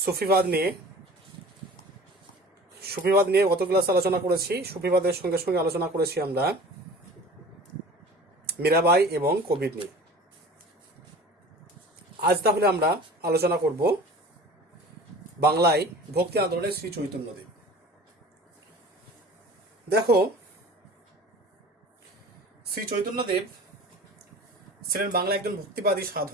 সুফিবাদ নিয়ে। গত ক্লাসে আলোচনা করেছি। সুফিবাদের সঙ্গে সঙ্গে আলোচনা করেছি আমরা মীরাবাই এবং কবির নিয়ে। আজ তাহলে আমরা আলোচনা করব বাংলায় ভক্তি আন্দোলনের শ্রী চৈতন্যদেব। দেখো, শ্রী চৈতন্যদেব ছিলেন বাংলা একজন ভক্তিবাদী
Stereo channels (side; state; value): both; normal; correlation 0.42